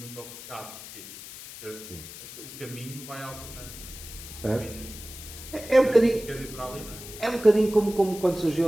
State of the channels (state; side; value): noise; left; hiss, 13 dB below the sound